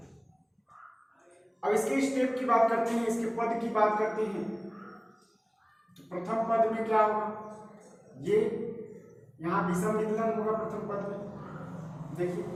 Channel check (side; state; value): both; identical; correlation 1.00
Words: अब इसके स्टेप की बात करते हैं, इसके पद की बात करते हैं। तो प्रथम पद में क्या होगा, ये यहां विषम विदलन होगा प्रथम पद में। देखिए